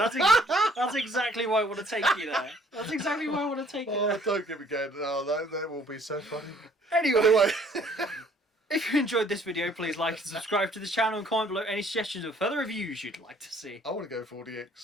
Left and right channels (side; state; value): both; normal; correlation 0.60